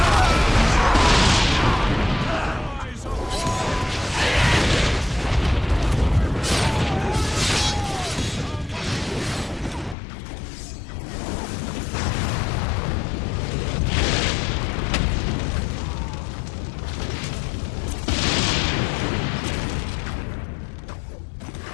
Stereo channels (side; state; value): right; drops out; at 10.0 s